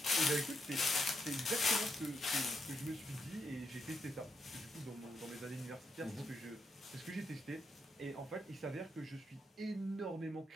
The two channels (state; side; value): normal; both; correlation 0.80